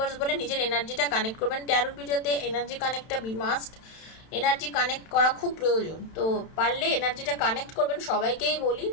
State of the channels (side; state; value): right; late; 31 ms